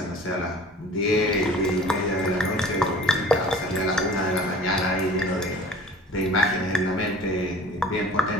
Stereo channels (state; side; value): normal; both; correlation 0.45